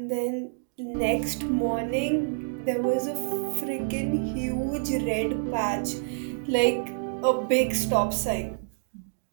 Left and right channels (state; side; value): silent; left; digital silence